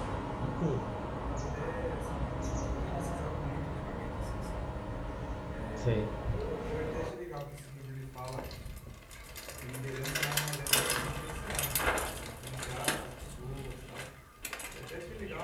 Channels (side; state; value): both; identical; correlation 1.00